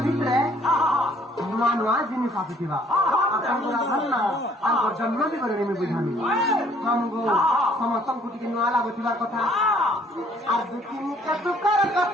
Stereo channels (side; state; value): both; normal; correlation 0.61